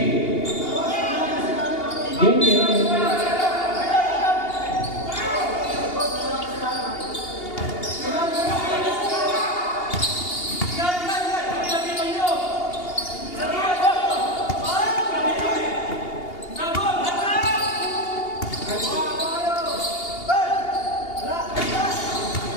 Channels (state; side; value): late; right; 2.8 ms